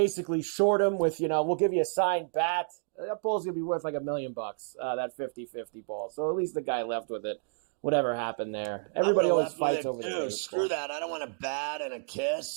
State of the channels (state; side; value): silent; left; digital silence